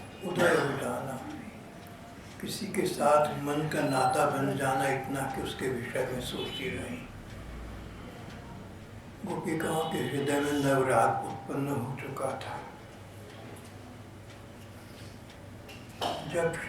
उदय हो जाना, किसी के साथ मन का नाता बन जाना, इतना कि उसके विषय में सोचती रही। गोपिकाओं के हृदय में नवराग उत्पन्न हो चुका था। जब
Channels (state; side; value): identical; both; correlation 1.00